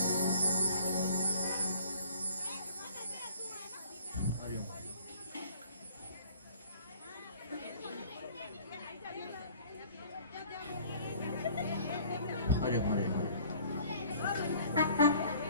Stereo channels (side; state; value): both; inverted; correlation -0.52